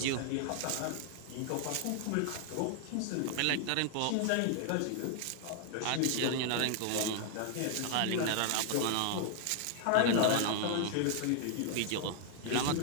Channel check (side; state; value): both; different; correlation 0.00